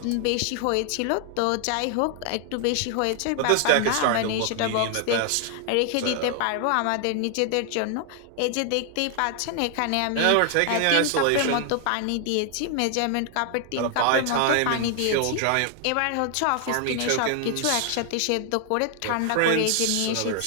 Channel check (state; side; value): different; both; correlation 0.00